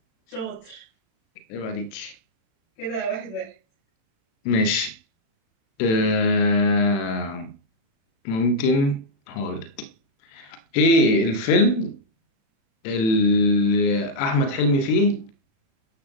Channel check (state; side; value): late; right; 36 ms